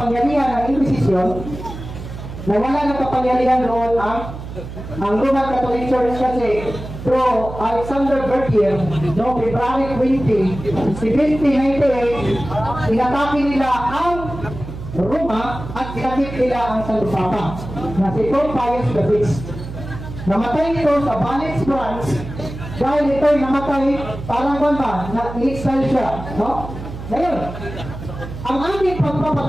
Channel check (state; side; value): noise; right; hum, 10 dB below the sound